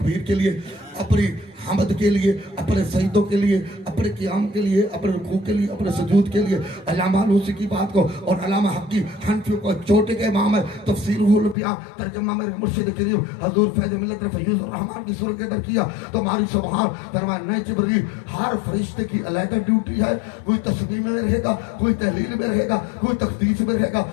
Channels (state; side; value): drops out; right; at 11.6 s